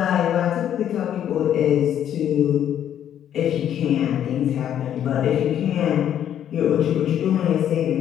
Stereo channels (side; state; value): right; quieter; 10.2 dB